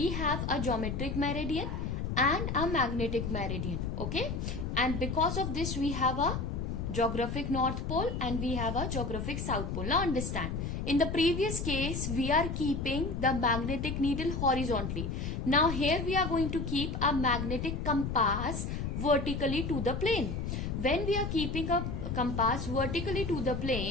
have a geometric meridian and a magnetic meridian. Okay. And because of this we have a geographic north pole and we have a geographic south pole. Now understand, in the previous case we are keeping the magnetic needle horizontally. Now here we are going to keep a magnetic compass vertically to the plane. When we are keeping a compass vertically to the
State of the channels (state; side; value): noise; left; rumble, 3 dB below the sound